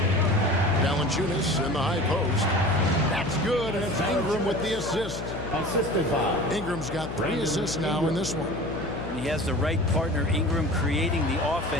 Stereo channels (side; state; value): left; noise; hum, 8 dB below the sound